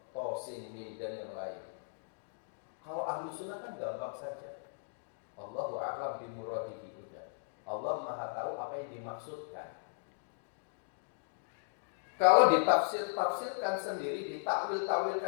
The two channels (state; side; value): silent; right; digital silence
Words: To, Sin, Mim dan yang lain. Kalau Ahlussunnah kan gampang saja. Allahu a'lam bimuradihi udah. Allah Maha tahu apa yang dimaksudkan. Kalau ditafsirkan sendiri,